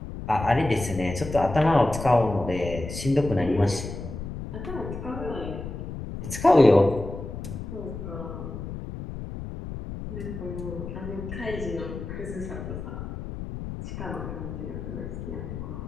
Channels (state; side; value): noise; left; rumble, 8 dB below the sound